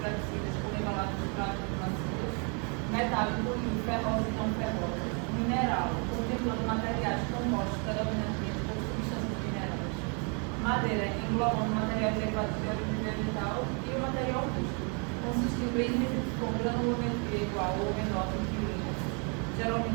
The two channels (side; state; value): left; quieter; 36.6 dB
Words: flexíveis por embalagens plásticas macias. Metálico e ferroso e não ferroso. Mineral, contemplando materiais compostos predominantemente por substâncias minerais. Madeira, englobando materiais derivados de origem vegetal e o material rústico, consistindo em resíduos com granulometria igual ou menor que milímetros,